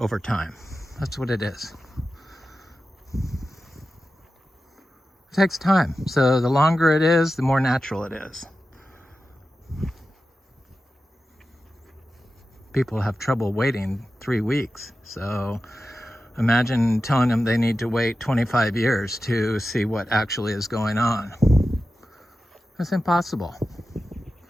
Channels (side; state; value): both; normal; correlation 0.93